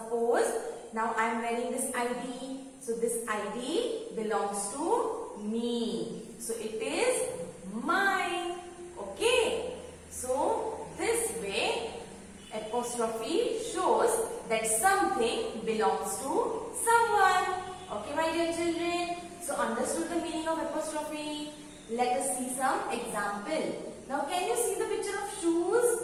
now I am wearing this ID. So this ID belongs to me. So it is mine. Okay? So this way apostrophe shows that something belongs to someone. Okay my dear children. So understood the meaning of apostrophe? Let us see some example. Now can you see the picture of shoes?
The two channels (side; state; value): both; identical; correlation 1.00